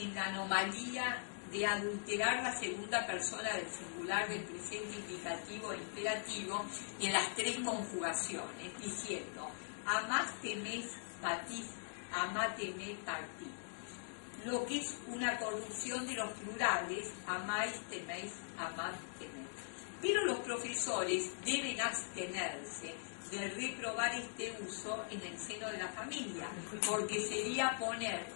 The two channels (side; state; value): right; silent; digital silence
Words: la anomalía de adulterar la segunda persona del singular del presente indicativo e imperativo en las tres conjugaciones, diciendo amásteme, patís, amáteme, partí, lo que es una corrupción de los plurales, amáis, teméis, amad, teméis. Pero los profesores deben abstenerse de reprobar este uso en el seno de la familia, porque sería poner